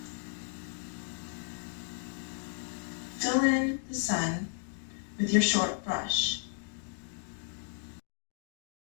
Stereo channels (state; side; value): silent; right; digital silence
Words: Fill in the sun with your short brush.